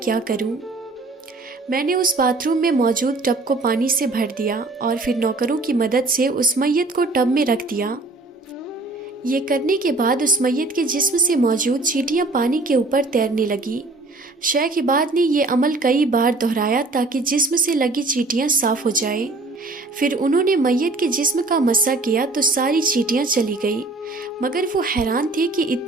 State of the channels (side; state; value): left; quieter; 3.2 dB